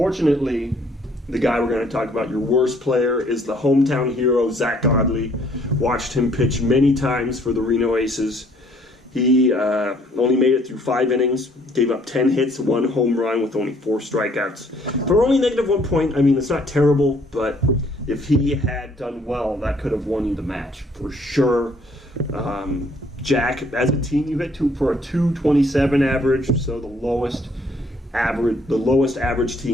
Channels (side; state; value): both; normal; correlation 0.62